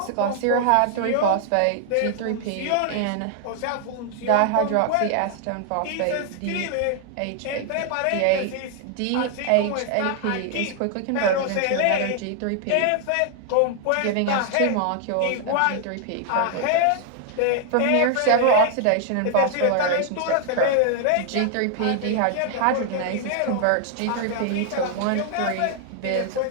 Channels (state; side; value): different; both; correlation 0.00